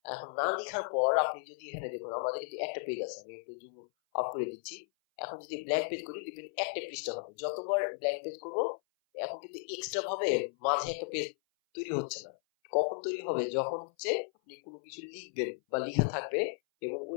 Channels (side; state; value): right; silent; 54 dB below the other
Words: এখন না লিখার পর আপনি যদি এখানে দেখুন আমাদের কিন্তু একটা পেজ আছে, আমি একটু জুম আউট করে দিচ্ছি। এখন যদি ব্ল্যাঙ্ক পেজ করি দেখবেন একটা পৃষ্ঠা হবে। যতবার ব্ল্যাঙ্ক পেজ করব এখন কিন্তু এক্সট্রা ভাবে মাঝে একটা পেজ তৈরি হচ্ছে না। কখন তৈরি হবে? যখন হচ্ছে আপনি কোনো কিছু লিখবেন বা লেখা থাকবে এবং